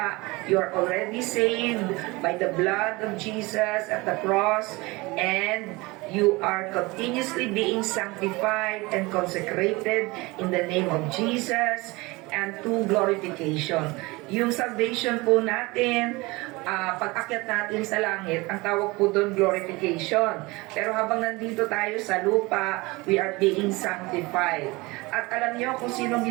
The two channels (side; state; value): left; quieter; 23.3 dB